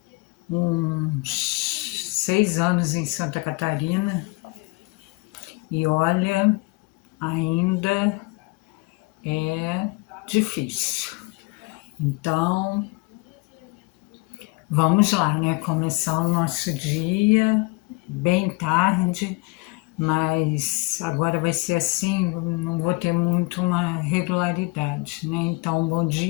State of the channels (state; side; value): quieter; right; 26.0 dB